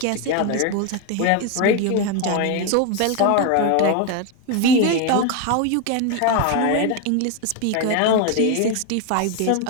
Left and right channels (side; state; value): both; different; correlation 0.02